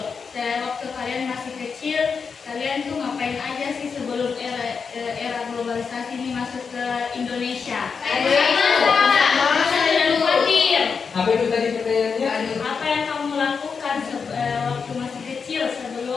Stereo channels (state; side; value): quieter; right; 5.6 dB